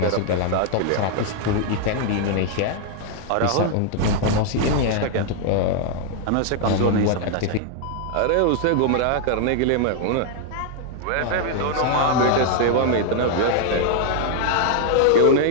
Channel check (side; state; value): both; different; correlation 0.00